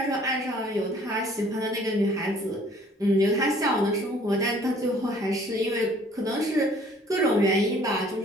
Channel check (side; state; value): both; normal; correlation 0.56